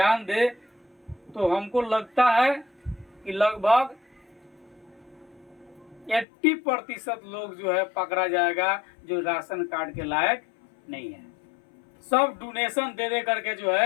दे तो हमको लगता है कि लगभग 80% लोग जो है पकड़ा जाएगा जो राशन कार्ड के लायक नहीं है। सब डोनेशन दे करके जो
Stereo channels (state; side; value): drops out; right; at 6.2 s